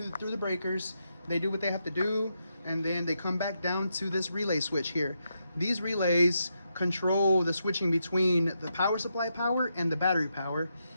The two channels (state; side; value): inverted; both; correlation -0.83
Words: the breakers. They do what they have to do, and then they come back down to this relay switch here. These relays control the switching between the power supply power and the battery power.